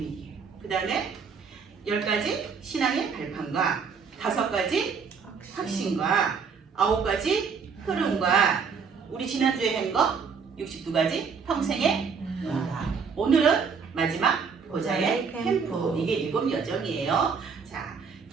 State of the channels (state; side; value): quieter; left; 5.8 dB